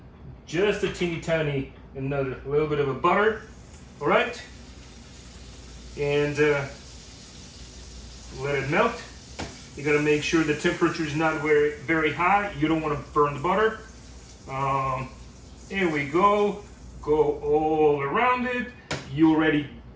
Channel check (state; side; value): identical; both; correlation 1.00